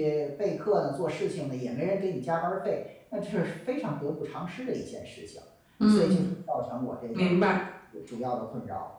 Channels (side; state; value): both; identical; correlation 1.00